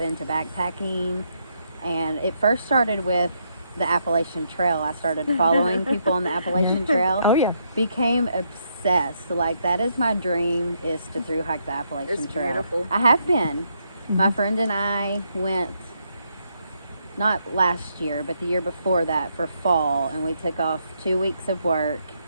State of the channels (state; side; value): inverted; both; correlation -0.76